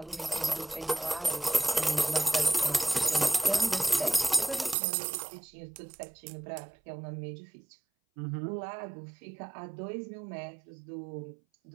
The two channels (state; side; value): drops out; left; at 4.8 s